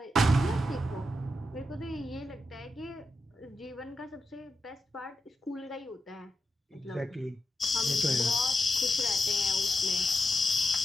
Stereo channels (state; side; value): normal; both; correlation 0.88